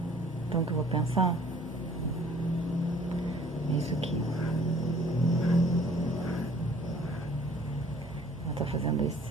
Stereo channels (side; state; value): both; normal; correlation 0.55